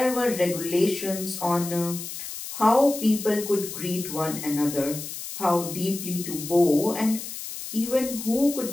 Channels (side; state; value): left; noise; hiss, 9 dB below the sound